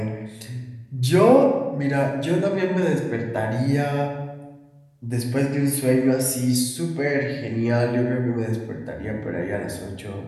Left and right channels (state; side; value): identical; both; correlation 1.00